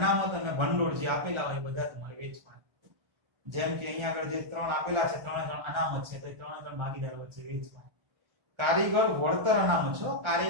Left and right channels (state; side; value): late; left; 1.4 ms